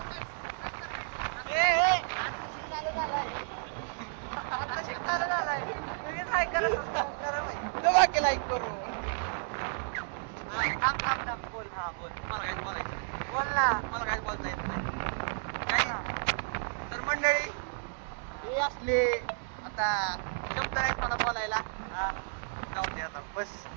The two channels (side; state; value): left; silent; digital silence